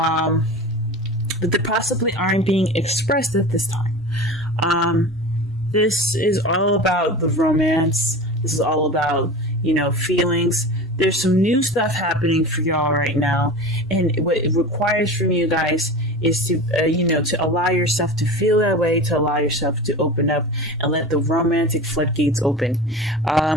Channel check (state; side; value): normal; both; correlation 0.32